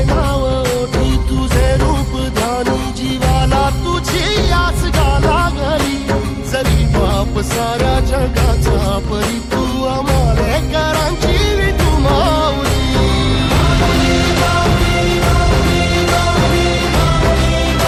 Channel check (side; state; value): both; identical; correlation 1.00